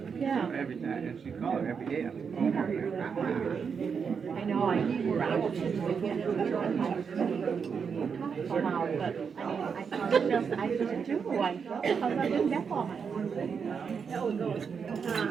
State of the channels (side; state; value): left; quieter; 6.2 dB